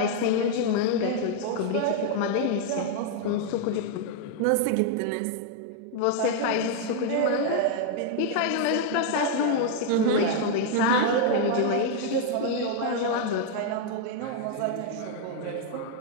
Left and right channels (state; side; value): different; both; correlation 0.00